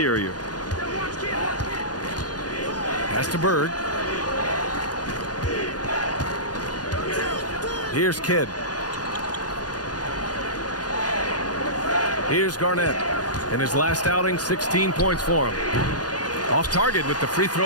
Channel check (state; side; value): late; right; 0.69 ms